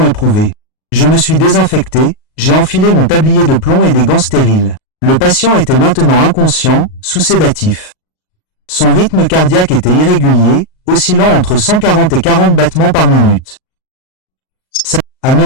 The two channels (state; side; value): late; right; 38 ms